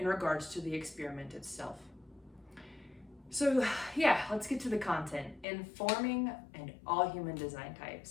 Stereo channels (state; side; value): drops out; right; at 5.5 s